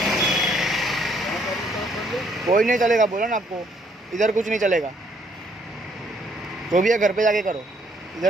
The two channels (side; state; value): both; normal; correlation 0.68